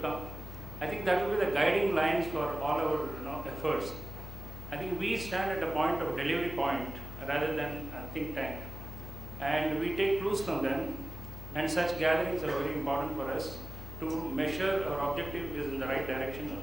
I think that will be the guiding lines for all our efforts. I think we stand at a point of delivery point rather than a think tank, and we take clues from them, and such gatherings are very important for us to measure our objective is in the right direction or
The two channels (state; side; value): noise; left; hum, 10 dB below the sound